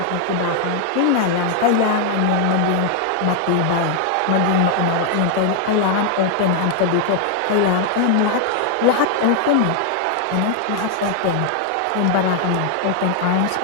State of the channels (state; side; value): different; both; correlation 0.00